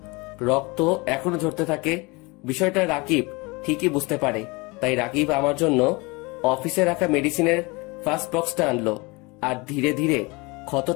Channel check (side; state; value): right; quieter; 26.1 dB